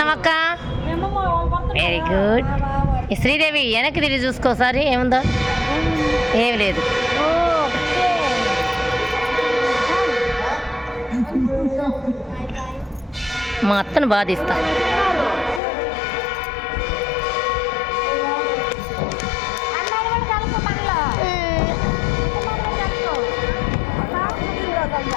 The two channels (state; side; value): drops out; right; at 15.6 s